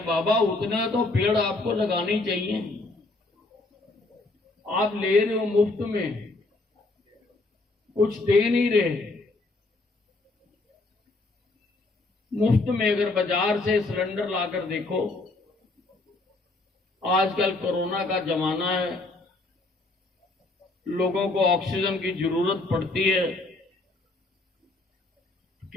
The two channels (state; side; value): quieter; right; 3.1 dB